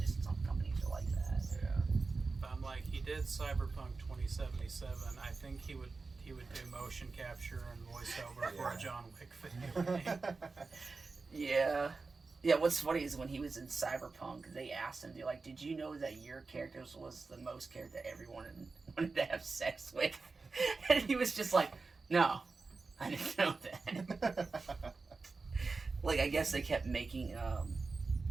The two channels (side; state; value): left; quieter; 4.1 dB